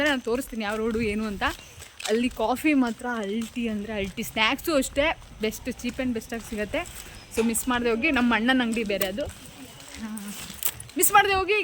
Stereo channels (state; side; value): identical; both; correlation 1.00